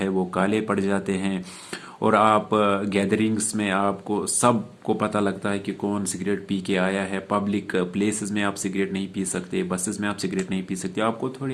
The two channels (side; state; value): both; identical; correlation 1.00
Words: वो काले पड़ जाते हैं, और आप गैदरिंग्स में आपको सबको पता लगता है कि कौन सिगरेट पी के आया है। पब्लिक प्लेसेस में आप सिगरेट नहीं पी सकते, बसेस में आप सिगरेट नहीं पी सकते, आपको थोड़ी